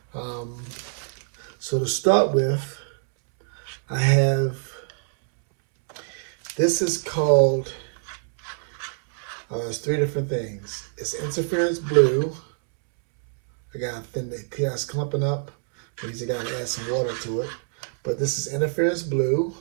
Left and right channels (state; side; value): silent; left; 62 dB below the other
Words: so to start with, I have, this is called, it's three different things. It's interference blue. I got the chaos clumping up. Means I gotta add some water to it. But this is interference blue